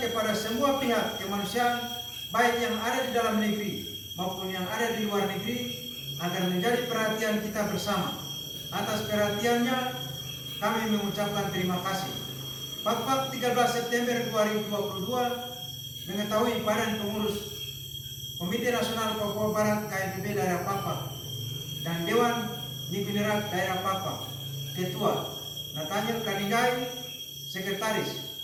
semua pihak kemanusiaan, baik yang ada di dalam negeri maupun yang ada di luar negeri, agar menjadi perhatian kita bersama. Atas perhatiannya, kami mengucapkan terima kasih. Pakpak 13 September 2022 mengetahui Badan Pengurus Komite Nasional Papua Barat KNPB daerah Pakpak dan Dewan Ningginerat daerah Pakpak, Ketua Nathaniel Kaninggai, Sekretaris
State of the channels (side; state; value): both; identical; correlation 1.00